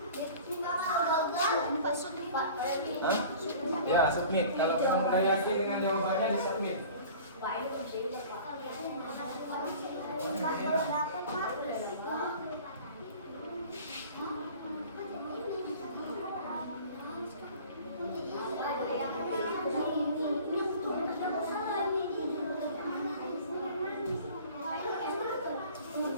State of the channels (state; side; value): inverted; both; correlation -0.44